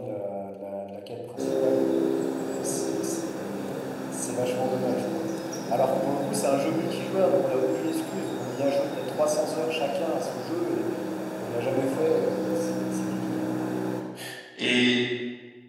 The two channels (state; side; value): identical; both; correlation 1.00